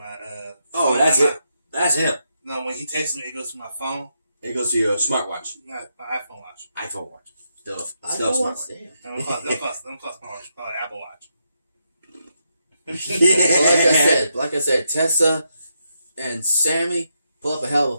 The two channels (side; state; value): both; inverted; correlation -0.81